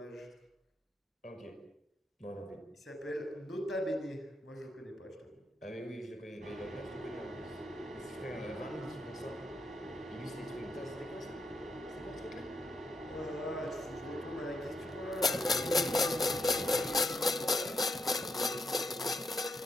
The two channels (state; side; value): normal; both; correlation 0.80